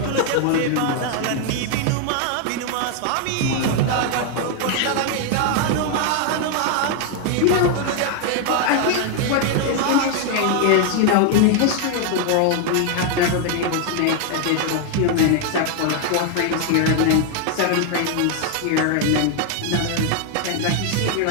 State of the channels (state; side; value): different; both; correlation 0.00